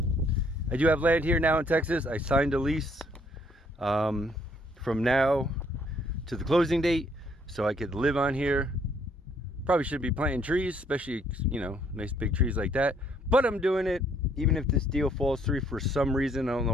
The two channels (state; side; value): normal; both; correlation 0.66